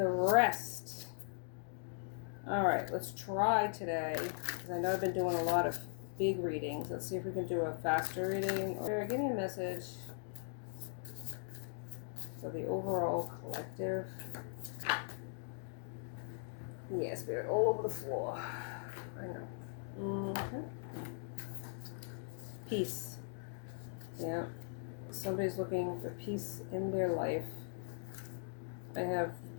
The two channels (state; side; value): silent; right; digital silence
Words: rest. Alright, let's try today, because I know I've been doing a lot of big readings. Let's see if we can do a faster reading. Or give me a message for the overall collective. Yeah, spirit all over the floor. I know. Peace. Yeah. Somebody's looking for peace in their life. I have